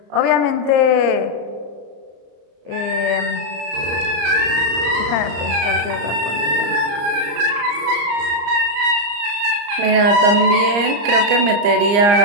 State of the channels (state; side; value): late; left; 34 ms